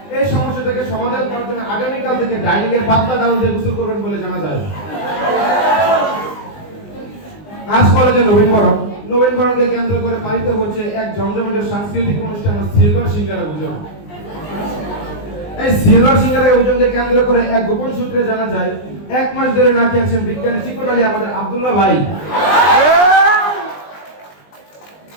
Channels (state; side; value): late; right; 20 ms